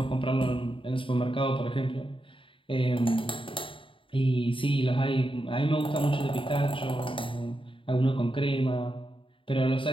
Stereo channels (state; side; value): late; right; 0.25 ms